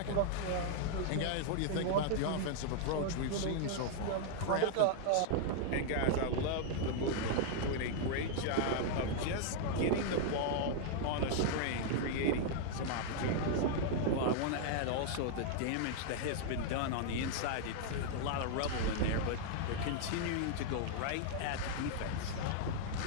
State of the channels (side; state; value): both; different; correlation 0.00